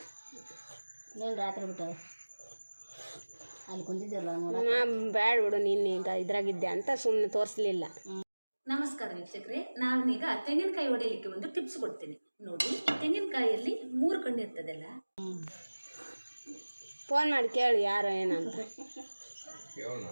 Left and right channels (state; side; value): inverted; both; correlation -1.00